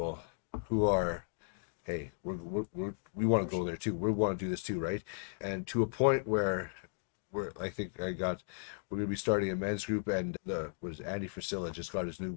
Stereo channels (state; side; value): silent; right; digital silence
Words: who are, hey, we want to go there too. We want to do this too, right? And to a point where I think we're going to be starting a men's group, and Andy Frisella just got his